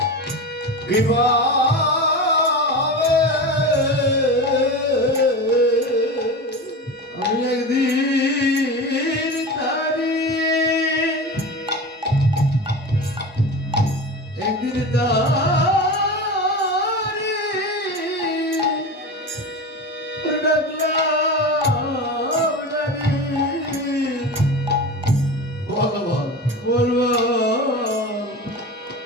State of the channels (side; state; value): both; normal; correlation 0.27